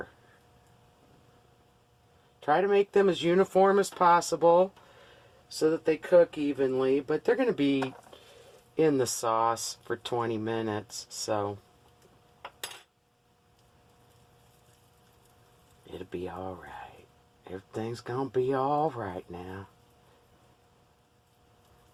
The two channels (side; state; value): both; identical; correlation 1.00